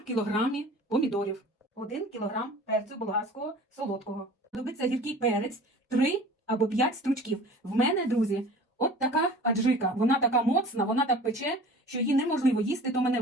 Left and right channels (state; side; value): normal; both; correlation 0.43